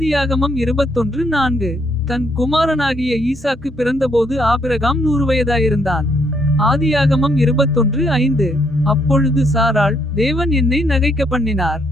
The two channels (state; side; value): noise; right; hum, 29 dB below the sound